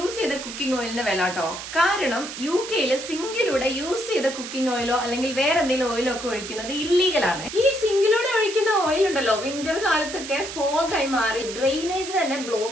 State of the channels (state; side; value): noise; right; hiss, 9 dB below the sound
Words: ചെയ്ത കുക്കിംഗ് ഓയിലിന്റെ വില കേട്ടോ. കാരണം UK-യില് സിങ്കിലൂടെ യൂസ് ചെയ്ത കുക്കിംഗ് ഓയിലോ അല്ലെങ്കിൽ വേറെ എന്തെങ്കിലും ഓയിലോ ഒക്കെ ഒഴിക്കുന്നത് ഇല്ലീഗലാണ്. ഈ സിങ്കിലൂടെ ഒഴിക്കുന്ന ഓയിൽ ഉണ്ടല്ലോ വിന്റർ കാലത്തൊക്കെ ഫോഗായി മാറി ഡ്രെയിനേജിന് തന്നെ